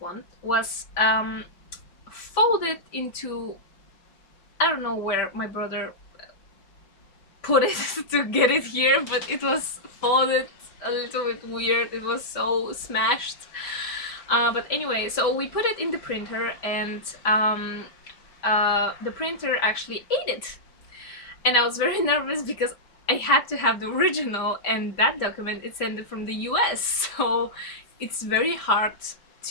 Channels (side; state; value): right; late; 5.1 ms